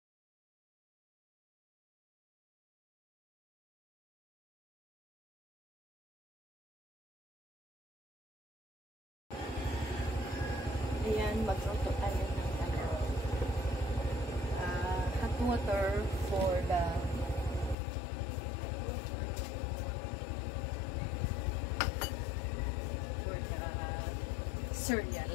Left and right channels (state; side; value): drops out; right; at 17.8 s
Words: Ayan, magluto tayo ng hot water for the cereal.